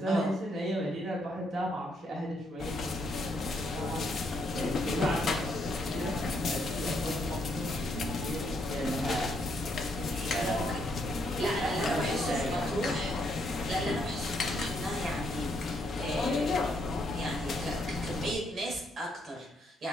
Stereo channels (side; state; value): both; normal; correlation 0.74